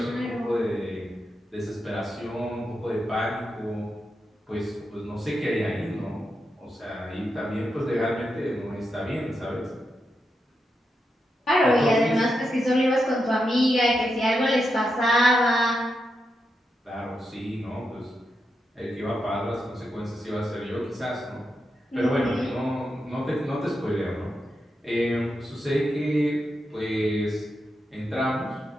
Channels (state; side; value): normal; both; correlation 0.86